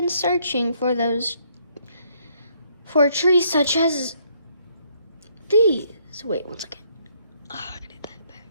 searching for trees such as these. Wait, one second. Oh, I gotta get that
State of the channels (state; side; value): inverted; both; correlation -0.69